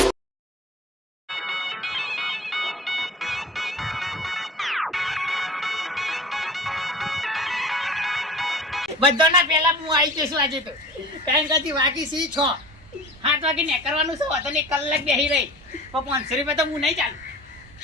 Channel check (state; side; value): normal; both; correlation 0.40